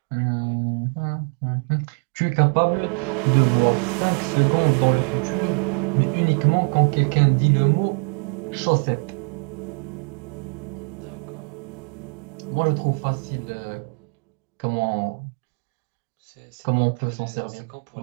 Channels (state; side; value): quieter; left; 37.1 dB